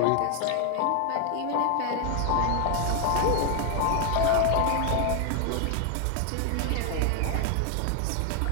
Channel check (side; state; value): both; different; correlation 0.00